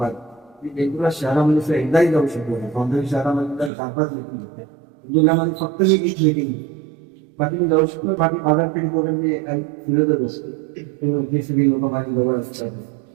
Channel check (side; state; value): left; drops out; at 3.7 s